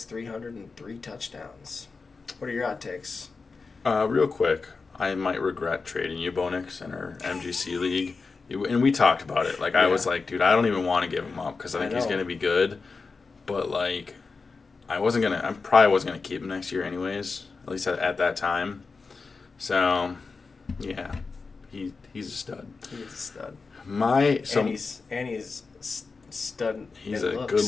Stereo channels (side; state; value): right; quieter; 4.4 dB